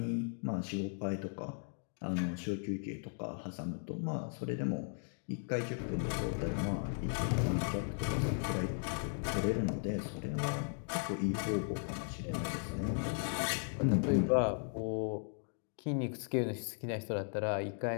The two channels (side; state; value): right; silent; 53 dB below the other